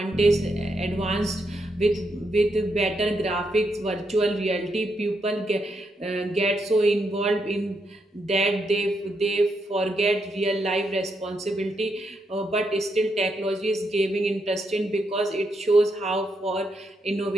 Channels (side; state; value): both; normal; correlation 0.80